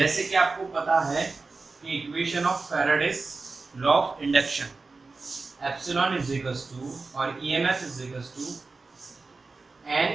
कि आपको पता है कि equation of Faraday's law of induction, epsilon is equals to और EMF is equals to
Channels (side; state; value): left; quieter; 3.9 dB